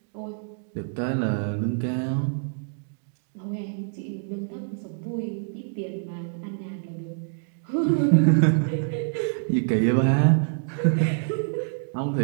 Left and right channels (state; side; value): silent; left; digital silence